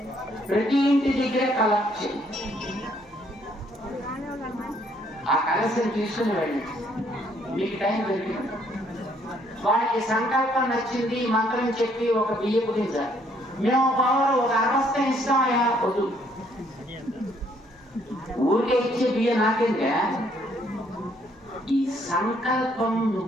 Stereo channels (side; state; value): both; normal; correlation 0.67